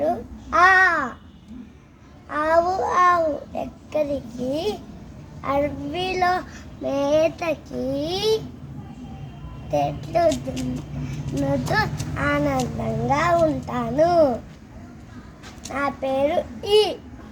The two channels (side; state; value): both; identical; correlation 1.00